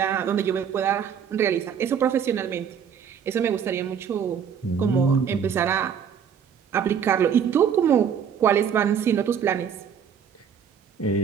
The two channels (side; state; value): left; quieter; 7.6 dB